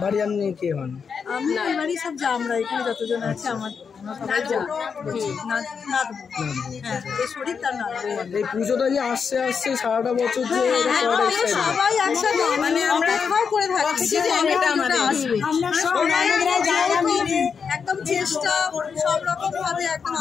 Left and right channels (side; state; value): right; quieter; 6.1 dB